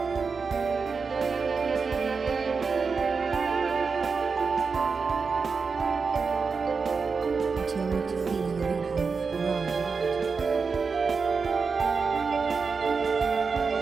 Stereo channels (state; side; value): quieter; left; 5.0 dB